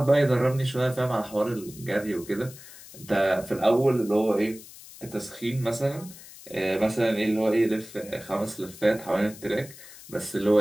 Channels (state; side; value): noise; left; hiss, 18 dB below the sound